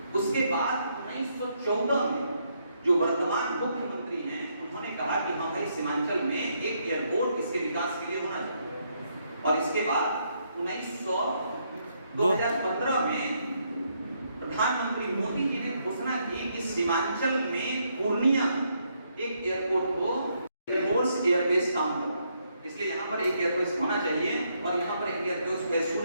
उसके बाद 1914 में जो वर्तमान मुख्यमंत्री हैं, उन्होंने कहा कि हाँ भाई सीमांचल में एक एयरपोर्ट इसके विकास के लिए होना चाहिए। और इसके बाद 2015 में प्रधानमंत्री मोदी जी ने घोषणा की कि सीमांचल में पूर्णिया एक एयरपोर्ट को एयरफोर्स एयरबेस काम करना, इसलिए यहाँ पर एक एयरबेस होना चाहिए और यहाँ पर एक airbase as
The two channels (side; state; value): both; inverted; correlation -0.75